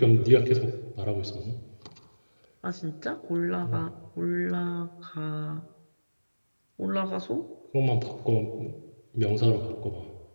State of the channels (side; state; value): both; inverted; correlation -1.00